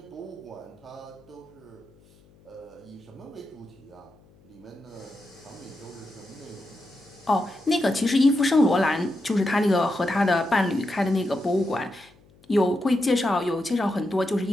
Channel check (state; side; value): noise; left; hum, 28 dB below the sound